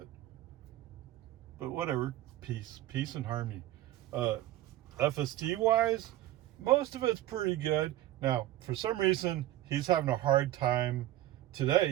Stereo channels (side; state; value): left; quieter; 14.6 dB